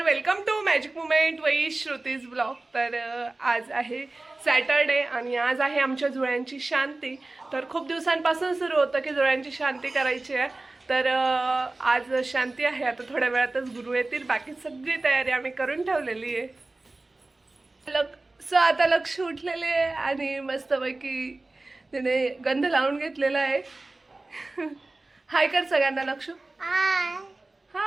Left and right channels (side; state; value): left; quieter; 3.1 dB